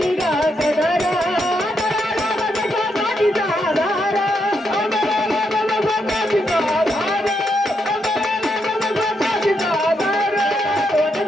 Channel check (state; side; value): normal; both; correlation 0.80